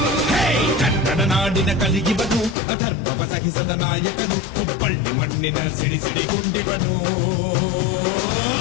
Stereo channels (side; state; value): right; drops out; at 2.6 s